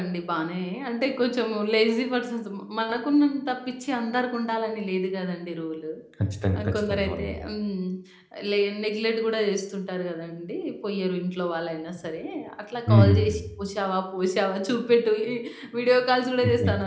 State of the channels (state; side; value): identical; both; correlation 1.00